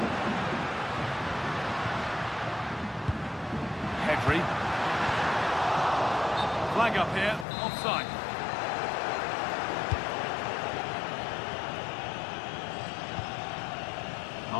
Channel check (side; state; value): right; drops out; at 7.5 s